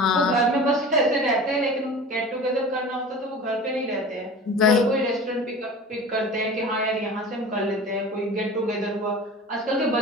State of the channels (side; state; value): both; normal; correlation 0.37